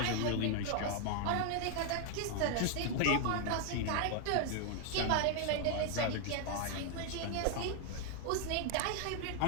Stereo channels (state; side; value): different; both; correlation 0.00